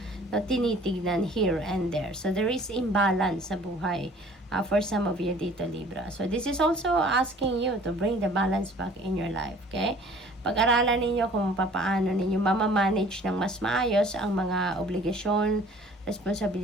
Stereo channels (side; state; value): both; normal; correlation 0.51